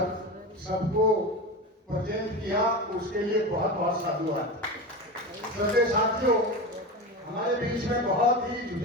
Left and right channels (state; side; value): normal; both; correlation 0.24